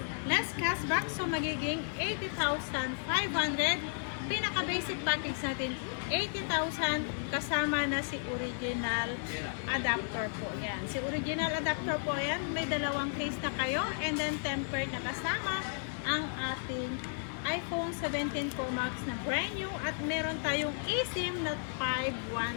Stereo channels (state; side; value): silent; right; 55 dB below the other